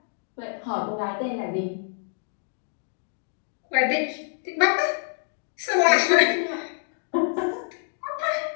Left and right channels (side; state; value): right; silent; digital silence